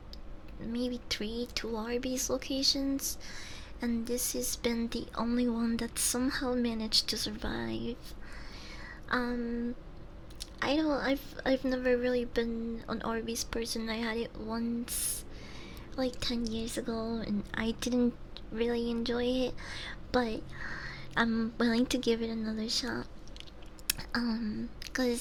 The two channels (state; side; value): identical; both; correlation 1.00